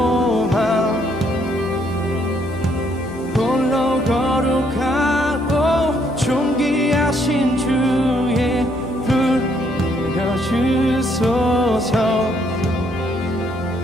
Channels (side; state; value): left; noise; hum, 15 dB below the sound